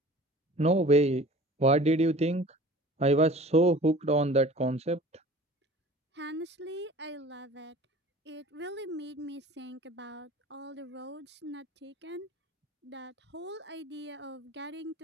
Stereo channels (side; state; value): both; normal; correlation 0.44